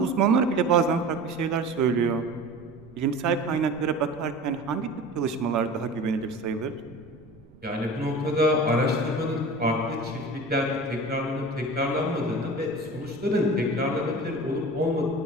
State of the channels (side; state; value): right; noise; rumble, 24 dB below the sound